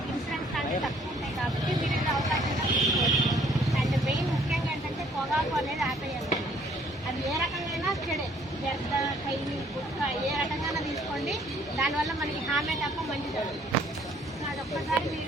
దానివల్ల మనకి హామీ తప్ప మంచిది అదొక్కసారి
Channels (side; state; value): both; normal; correlation 0.61